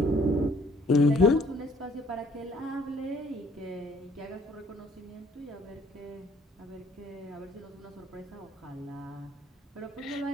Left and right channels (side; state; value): both; normal; correlation 0.60